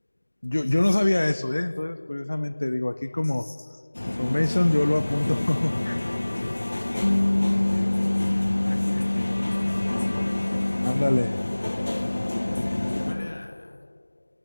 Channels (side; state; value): both; inverted; correlation -1.00